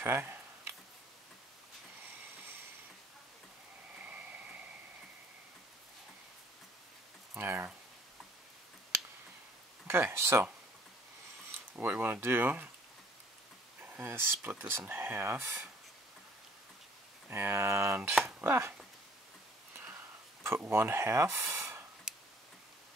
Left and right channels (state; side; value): normal; both; correlation 0.57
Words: There. Okay, so what you want to do is split this in half and put one half